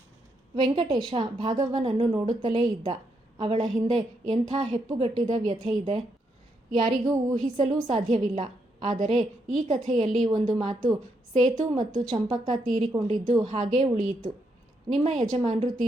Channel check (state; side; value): normal; both; correlation 0.78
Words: ವೆಂಕಟೇಶ ಭಾಗವ್ವನನ್ನು ನೋಡುತ್ತಲೇ ಇದ್ದ. ಅವಳ ಹಿಂದೆ ಎಂಥ ಹೆಪ್ಪುಗಟ್ಟಿದ ವ್ಯಥೆ ಇದೆ, ಯಾರಿಗೂ ಊಹಿಸಲೂ ಸಾಧ್ಯವಿಲ್ಲ. ಆದರೆ ಈ ಕಥೆಯಲ್ಲಿ ಒಂದು ಮಾತು ಸೇತು ಮತ್ತು ಚಂಪಕ್ಕ ತೀರಿಕೊಂಡಿದ್ದು ಹಾಗೇ ಉಳಿಯಿತು. ನಿಮ್ಮ ಯಜಮಾನರು